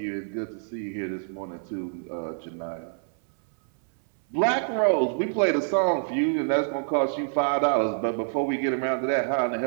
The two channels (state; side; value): silent; left; 60 dB below the other